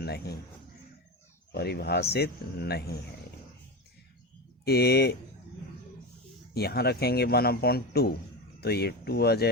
परिभाषित नहीं है। ये यहाँ रखेंगे 1/2 तो ये 2 आ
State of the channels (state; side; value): normal; both; correlation 0.21